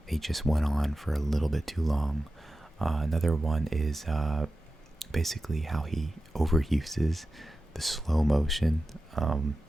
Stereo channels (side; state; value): both; normal; correlation 0.93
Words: they just went on for a little bit too long. Another one is basically how he overuses the slow motion.